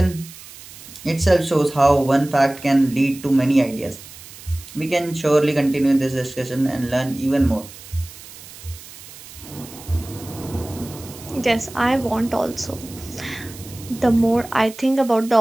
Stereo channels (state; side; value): noise; right; hiss, 17 dB below the sound